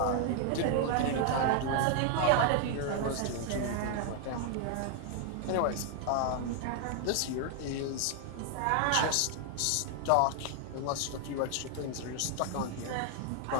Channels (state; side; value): different; both; correlation 0.00